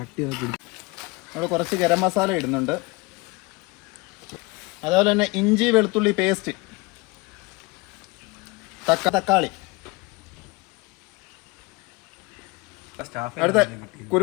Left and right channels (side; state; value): right; quieter; 24.6 dB